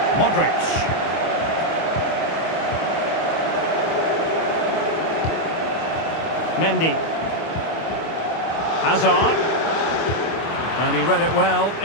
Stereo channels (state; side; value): late; right; 25 ms